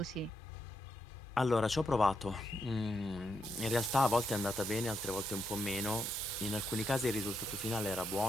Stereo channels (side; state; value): both; normal; correlation 0.81